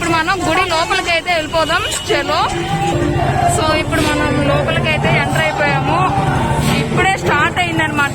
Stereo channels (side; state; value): both; identical; correlation 1.00